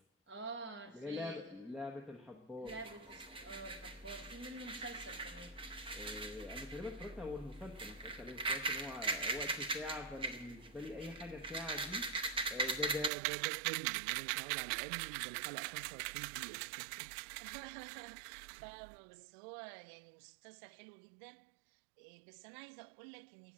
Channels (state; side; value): drops out; left; at 13.1 s